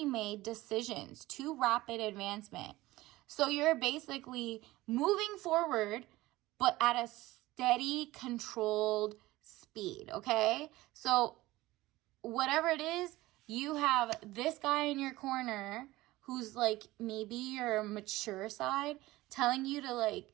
made decisions, too rapid advancement. So you're basically moving forward, but at a steady, controlled speed, okay? So whatever it is, you have this guy in your corner who's like maybe your mature side telling you to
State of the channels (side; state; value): left; quieter; 18.3 dB